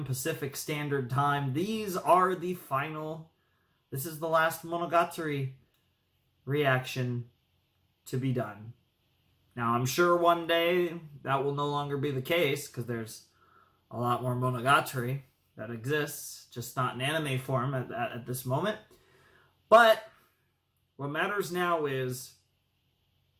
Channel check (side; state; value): both; identical; correlation 1.00